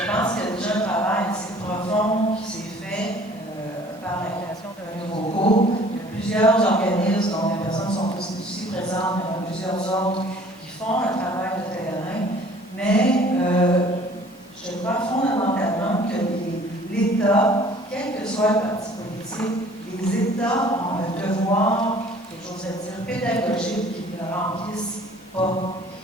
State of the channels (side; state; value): both; normal; correlation 0.52